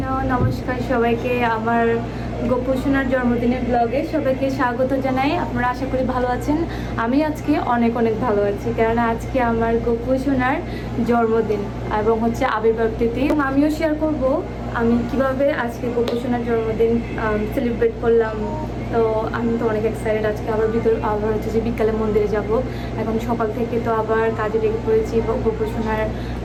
নমস্কার সবাইকে। আমার গোপু সোনার জন্মদিনের ব্লগে সবাইকে স্বাগত জানাই। আপনারা আশা করি ভালো আছেন। আমি আজকে অনেক অনেক ভালো আছি, কেননা আজকে আমার গোপু সোনার জন্মদিন এবং হচ্ছে আবির্ভাব তিথি। আমিও শেয়ার করব আমি কিভাবে আজকে গোপু সোনার জন্মদিন সেলিব্রেট করলাম। তো আমি তো অনেক এক্সাইটেড। আজকে আবার হচ্ছে যে বিকালে মন্দিরে যাব। এখন সকাল থেকে তো আবার কাজে লেগে পড়েছি, গোপু সোনার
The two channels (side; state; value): both; identical; correlation 1.00